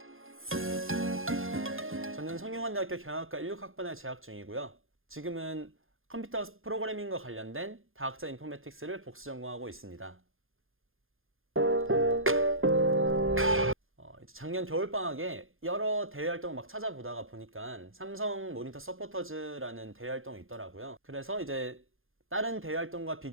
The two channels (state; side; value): late; left; 0.60 ms